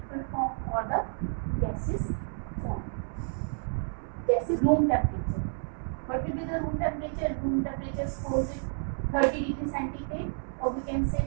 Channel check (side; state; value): left; silent; 58 dB below the other